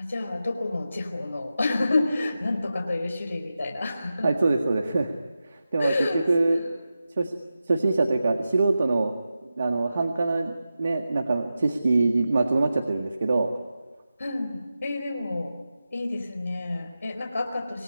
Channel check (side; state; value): both; inverted; correlation -0.92